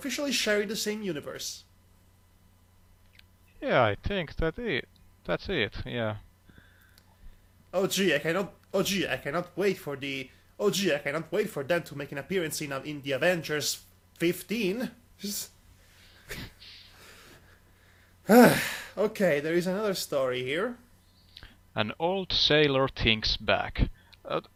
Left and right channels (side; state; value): both; identical; correlation 1.00